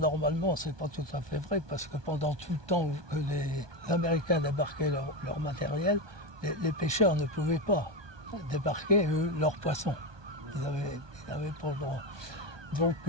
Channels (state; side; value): late; left; 1.2 ms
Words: c'est pas tout à fait vrai, parce que pendant tout le temps que les Américains débarquaient leur matériel, les pêcheurs ne pouvaient pas débarquer leurs poissons. Ils n'avaient pas le droit. Donc